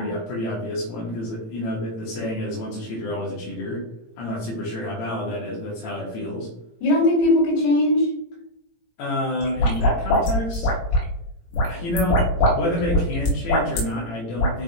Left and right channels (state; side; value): late; right; 18 ms